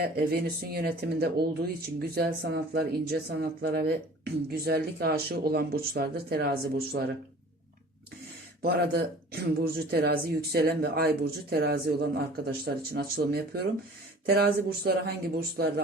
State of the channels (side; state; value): both; normal; correlation 0.46